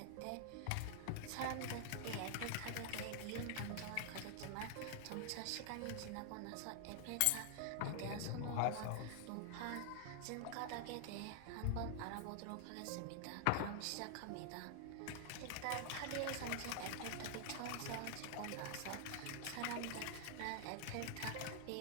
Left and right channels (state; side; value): different; both; correlation 0.00